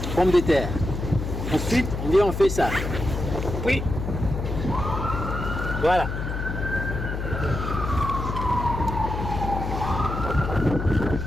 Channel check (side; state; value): left; noise; hum, 4 dB below the sound